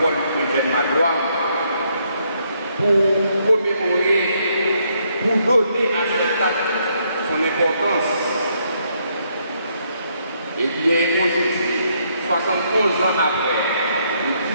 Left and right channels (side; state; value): both; inverted; correlation -0.73